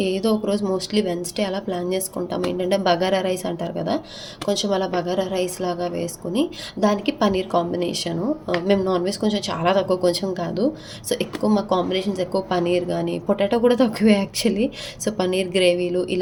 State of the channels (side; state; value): both; identical; correlation 1.00